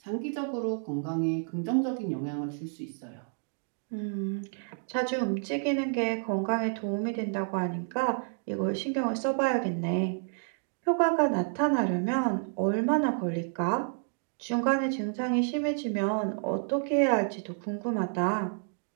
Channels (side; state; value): left; silent; 58 dB below the other